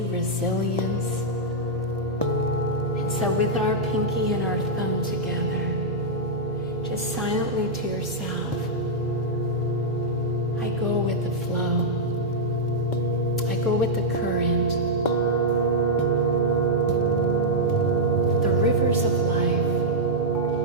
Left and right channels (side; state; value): both; normal; correlation -0.06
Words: resilience. And so with our pinky and our thumb together, just silently to yourself, I go with the flow. I go with the current. The rivers of life.